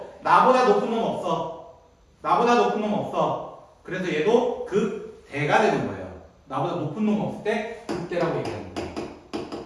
나보다 높은 놈 없어. 그래서 얘도 극대가 되는 거예요. 나보다 높은 놈 없을 때 극대라고 얘기하는 거예요.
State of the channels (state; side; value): identical; both; correlation 1.00